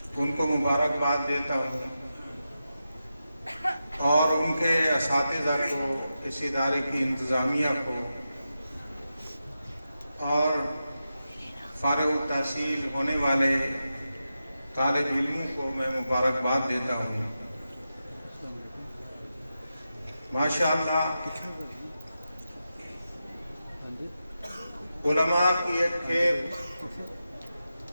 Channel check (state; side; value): inverted; both; correlation -0.90